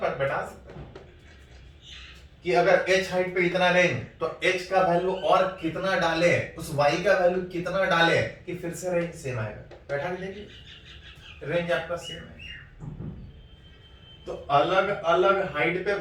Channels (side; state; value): both; identical; correlation 1.00